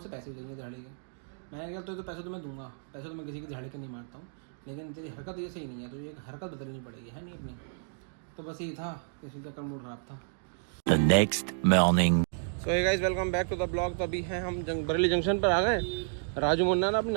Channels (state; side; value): silent; left; digital silence